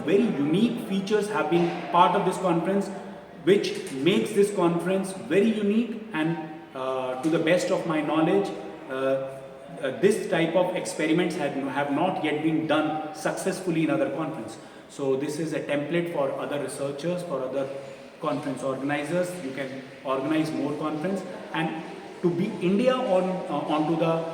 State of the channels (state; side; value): identical; both; correlation 1.00